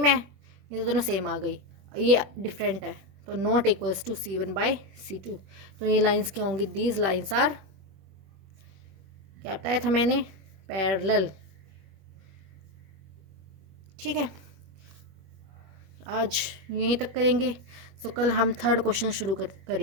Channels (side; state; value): left; late; 21 ms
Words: है, ये दोनों सेम आ गई, ये डिफरेंट है, तो नॉट इक्वल्स टू C1/C2। तो ये लाइंस क्या होंगी, दीज लाइंस आर, क्या बताया था मैंने, पैरेलल। ठीक है, आज यहीं तक करेंगे। सो कल हम थर्ड क्वेश्चन शुरू